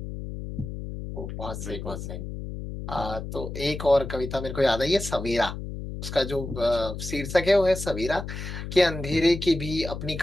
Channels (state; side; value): noise; left; hum, 7 dB below the sound